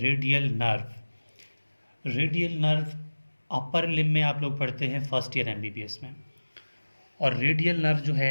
nerve. Radial nerve upper limb में आप लोग पढ़ते हैं फर्स्ट ईयर एमबीबीएस में। और रेडियल नर्व जो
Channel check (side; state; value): both; inverted; correlation -1.00